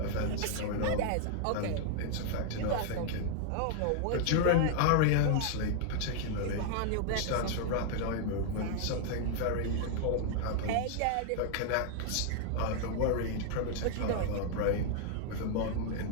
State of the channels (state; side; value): different; both; correlation 0.00